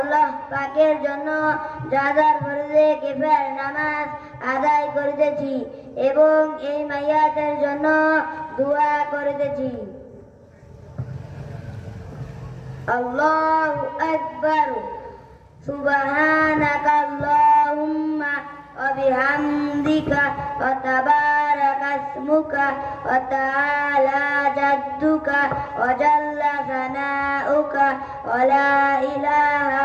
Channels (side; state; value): both; identical; correlation 1.00